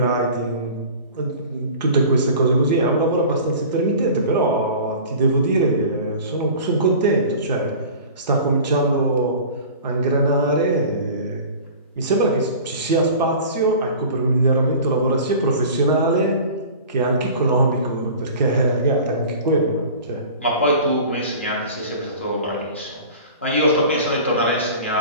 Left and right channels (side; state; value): both; inverted; correlation -0.40